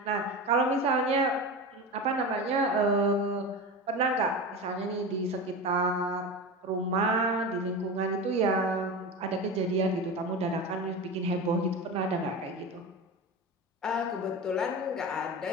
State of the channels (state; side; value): normal; both; correlation 0.25